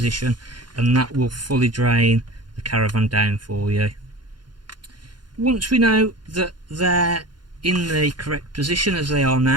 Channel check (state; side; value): late; left; 0.71 ms